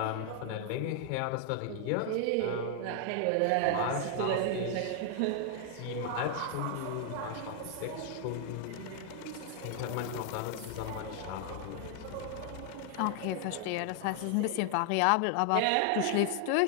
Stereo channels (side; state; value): both; different; correlation 0.00